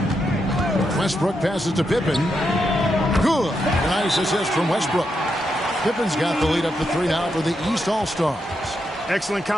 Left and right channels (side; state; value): both; normal; correlation 0.83